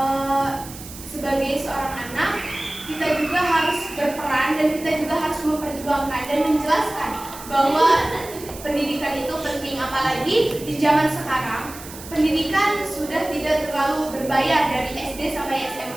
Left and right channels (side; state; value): right; noise; hiss, 15 dB below the sound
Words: sebagai seorang anak kita juga harus berperan dan kita juga harus memperjuangkan dan menjelaskan bahwa pendidikan itu penting, apalagi di zaman sekarang pendidikan sudah tidak terlalu berbayar dari SD sampai